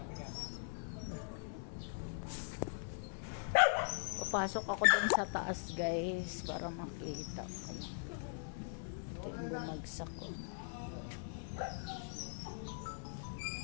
Papasok ako dun sa taas guys para makita ko. Ito yung bumagsak ko.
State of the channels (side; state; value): right; silent; digital silence